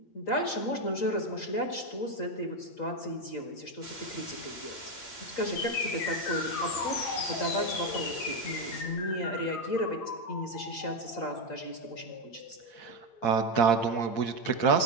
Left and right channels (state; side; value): late; right; 8.8 ms